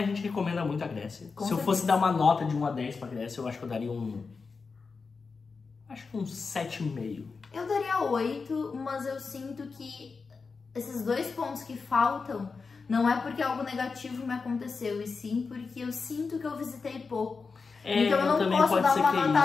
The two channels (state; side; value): quieter; right; 4.7 dB